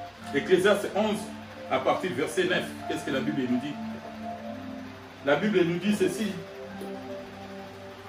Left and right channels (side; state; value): both; identical; correlation 1.00